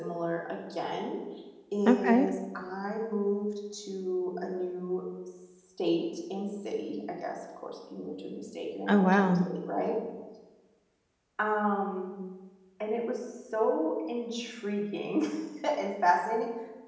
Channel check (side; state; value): both; identical; correlation 1.00